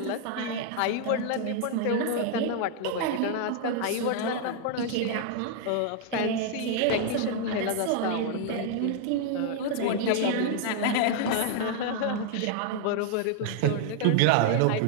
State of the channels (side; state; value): both; different; correlation 0.00